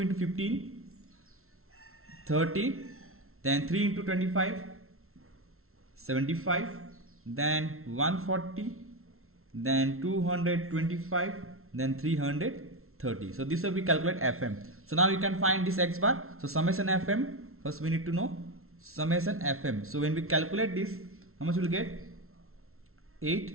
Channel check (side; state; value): left; late; 0.62 ms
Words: into 15, 30, then 3 into 25, 75, then 140, then 225, then 330. So this will be calculate fm. So now you can find this x bar. So summation fm, first we need to know summation fm. So when we calculate this, how much will get?